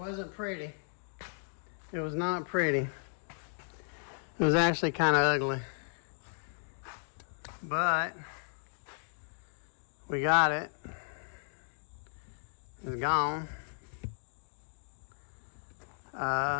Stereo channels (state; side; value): silent; right; digital silence